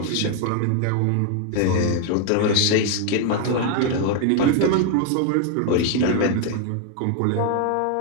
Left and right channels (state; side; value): different; both; correlation 0.00